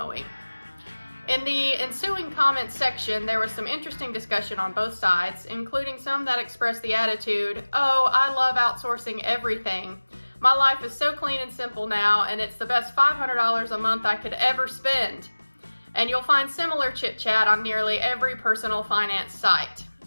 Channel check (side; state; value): both; inverted; correlation -1.00